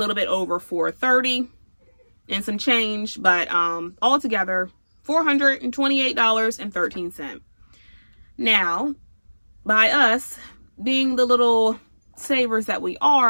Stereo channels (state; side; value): inverted; both; correlation -1.00